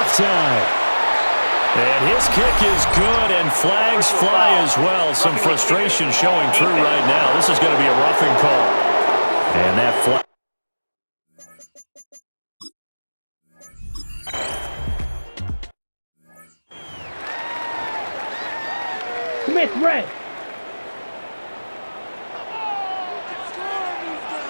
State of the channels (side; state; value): both; inverted; correlation -1.00